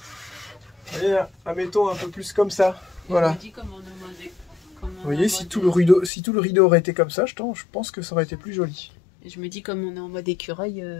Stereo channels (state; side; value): drops out; right; at 6.1 s